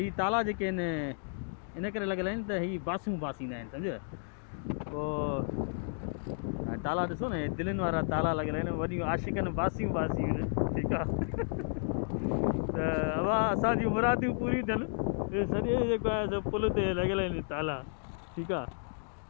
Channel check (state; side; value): silent; right; digital silence